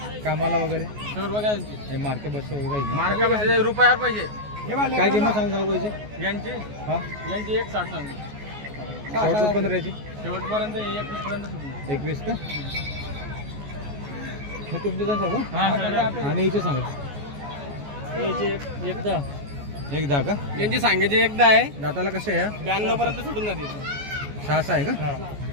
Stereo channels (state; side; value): late; left; 14 ms